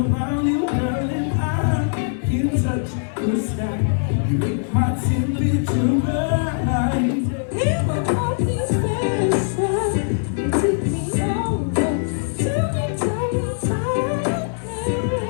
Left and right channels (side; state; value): right; silent; digital silence